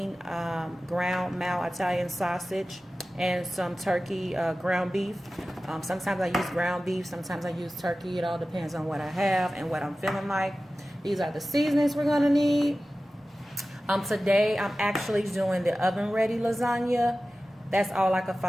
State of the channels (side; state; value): both; normal; correlation 0.96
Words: ground mal Italian sausage and some turkey ground beef. Sometimes I use ground beef, sometimes I use turkey. It all depends on what I have and what I'm feeling like. These are the seasonings we're going to need. Today I'm actually doing the oven ready lasagna. That's all I could